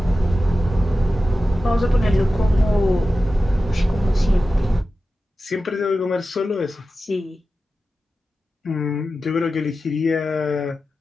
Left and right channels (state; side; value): normal; both; correlation 0.93